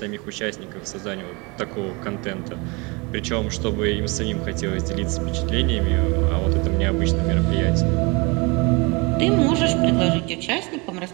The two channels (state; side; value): quieter; left; 27.9 dB